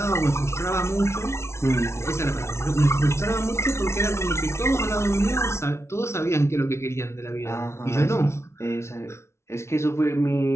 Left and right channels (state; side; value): late; right; 0.13 ms